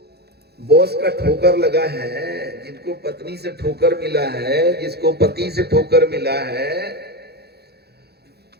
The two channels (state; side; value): late; left; 0.47 ms